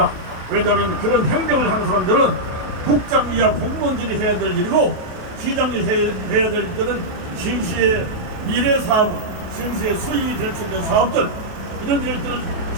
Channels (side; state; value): left; late; 28 ms